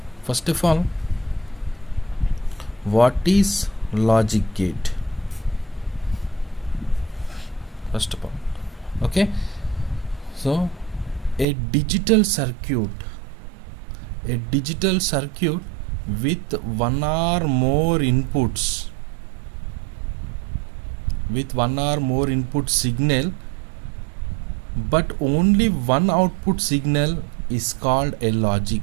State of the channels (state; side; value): drops out; left; at 11.5 s